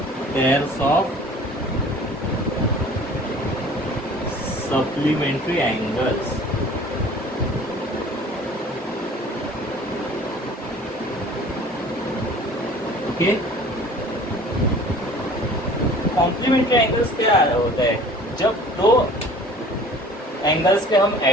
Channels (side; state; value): both; normal; correlation 0.48